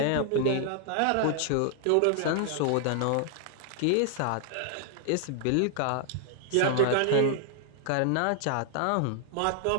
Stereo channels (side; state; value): both; different; correlation 0.00